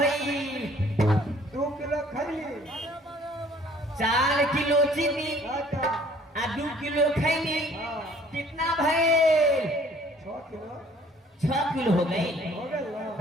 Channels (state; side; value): normal; both; correlation 0.56